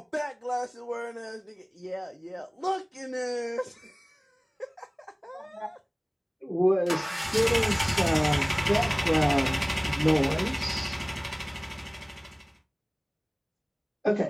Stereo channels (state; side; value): identical; both; correlation 1.00